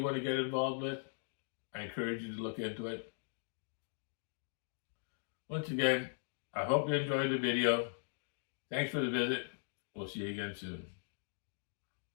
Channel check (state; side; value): silent; right; digital silence